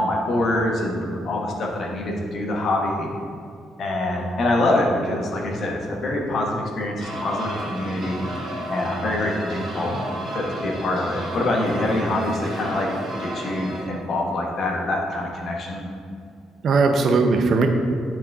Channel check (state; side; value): normal; both; correlation 0.75